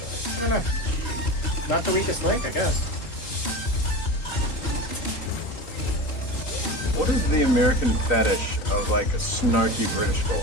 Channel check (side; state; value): right; late; 3.9 ms